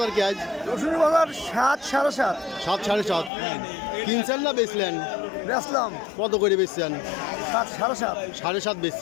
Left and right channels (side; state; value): right; drops out; at 3.3 s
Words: কি আজ? রসুনের বাজার 7 সাড়ে 7। 7 সাড়ে 7 কিনছেন না বেচলেন? বেচলাম কত করে বেচছেন? 7 সাড়ে 7। 7.5